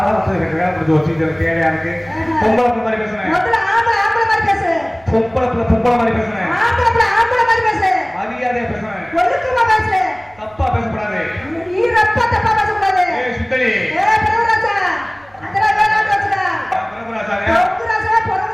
வந்து எனக்கு வேலை முடிஞ்சு வச்சு தேவையா இருக்கு பொம்பளை மாதிரி பேசுறேன் பொம்பளை மாதிரி பேசுறேன் மரியாதையா பேசுறேன் தப்பா பேசக்கூடாது சுத்தலி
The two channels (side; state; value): right; noise; rumble, 29 dB below the sound